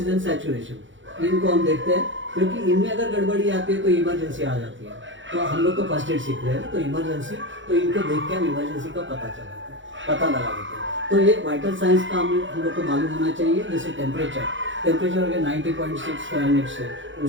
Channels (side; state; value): left; late; 0.55 ms